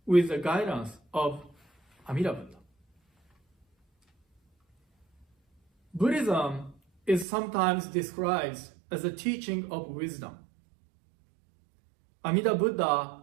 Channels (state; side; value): drops out; left; at 7.2 s